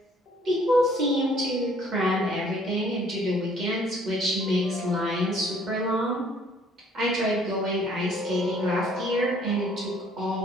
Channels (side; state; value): both; normal; correlation 0.59